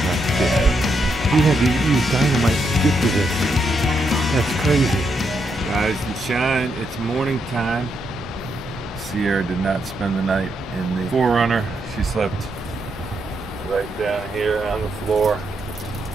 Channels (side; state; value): both; normal; correlation 0.80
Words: not scared. You had to use dynamite to get to this. That's crazy. Rise and shine, it's morning time. Sierra did not spend the night in the Forerunner. She slept right down here on the floor